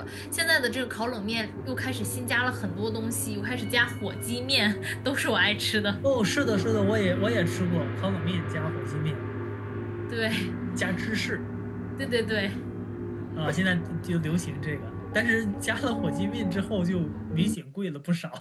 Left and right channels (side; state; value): both; identical; correlation 1.00